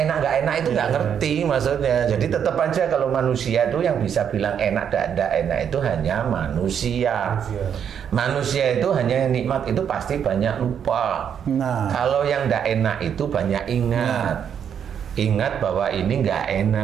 nggak enak itu nggak ngerti maksudnya. Jadi tetap aja kalau manusia itu yang bisa bilang enak dan tidak enak itu hanya manusia. Manusia itu hanya nikmat itu pasti banyak lupa. Nah. Kalau yang tidak enak itu banyak ingat. Ingat bahwa ini nggak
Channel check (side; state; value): left; quieter; 8.2 dB